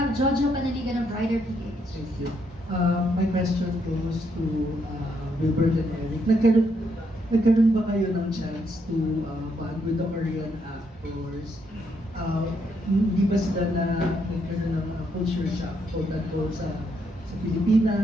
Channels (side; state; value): both; normal; correlation 0.75